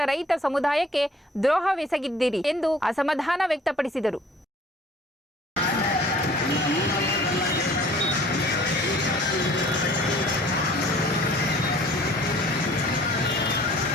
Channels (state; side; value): normal; both; correlation 0.52